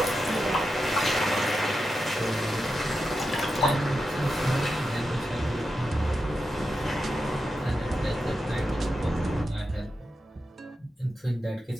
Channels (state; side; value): normal; both; correlation 0.89